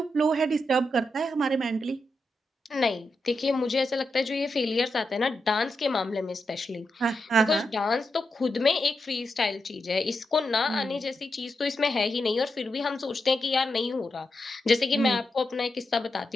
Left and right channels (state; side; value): normal; both; correlation 0.86